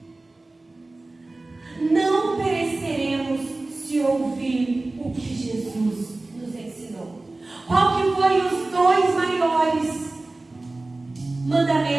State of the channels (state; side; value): quieter; left; 3.1 dB